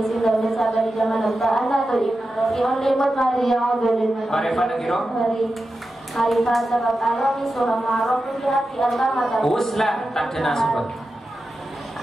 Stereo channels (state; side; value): normal; both; correlation 0.91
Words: dan besar dari zaman letak anda tu iman yang limut Maria dari Marifat negiro. Marifat sebab Allah ni surah Ma'aruf di hati Allah mata Uslah tak ada nasabah.